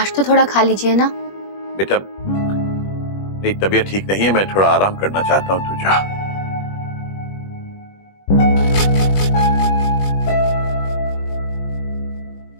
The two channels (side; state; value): right; late; 21 ms